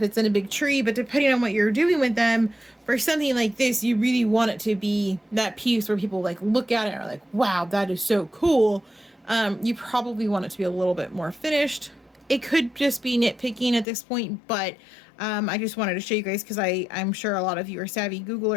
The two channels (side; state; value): right; drops out; at 13.9 s